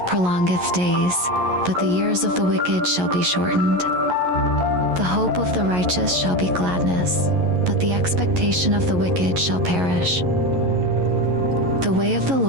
prolongeth days, but the years of the wicked shall be shortened. The hope of the righteous shall be gladness, but the expectation of the wicked shall perish. The way of the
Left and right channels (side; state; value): left; late; 11 ms